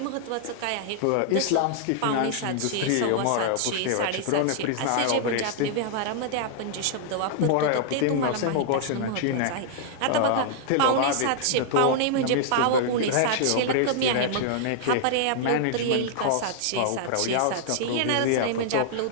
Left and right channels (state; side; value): different; both; correlation -0.01